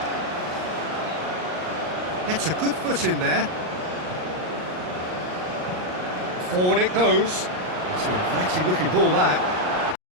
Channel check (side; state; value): left; late; 39 ms